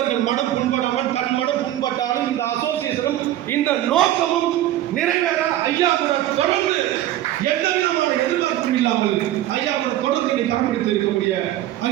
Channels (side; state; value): left; quieter; 13.6 dB